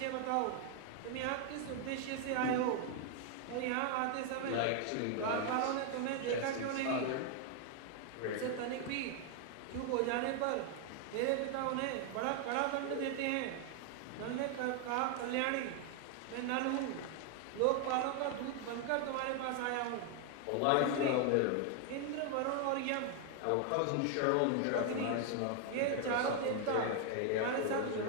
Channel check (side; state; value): both; different; correlation 0.00